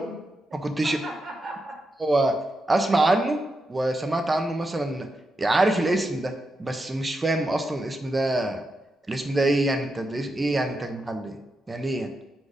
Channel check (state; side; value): normal; both; correlation 0.86